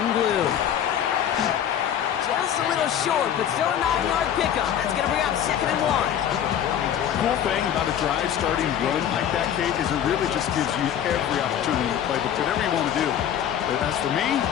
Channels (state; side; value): quieter; right; 9.7 dB